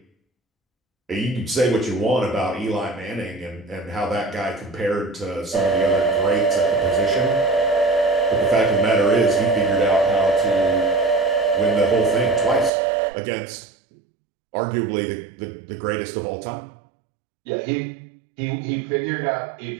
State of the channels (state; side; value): drops out; left; at 12.7 s